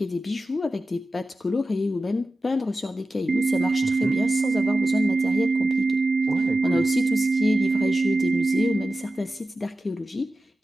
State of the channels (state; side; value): normal; both; correlation 0.93